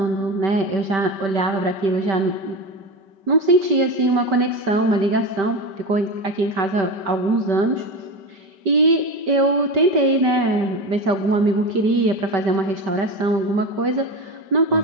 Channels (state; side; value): late; left; 5.2 ms